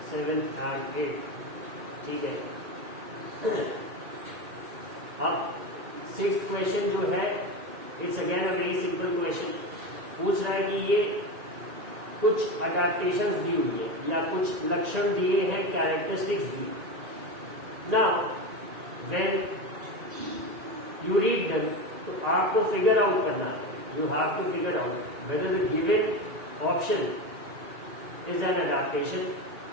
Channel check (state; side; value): late; left; 1.9 ms